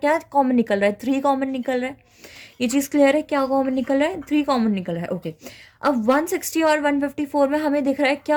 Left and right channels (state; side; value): identical; both; correlation 1.00